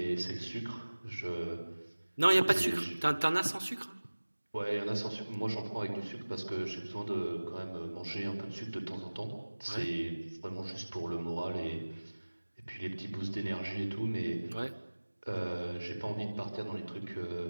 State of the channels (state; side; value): inverted; both; correlation -1.00